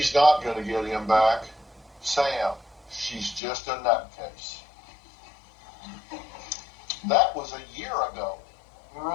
not going to get him back. Sam, she's just a nutcase. That was a year ago. We were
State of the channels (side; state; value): right; drops out; at 3.4 s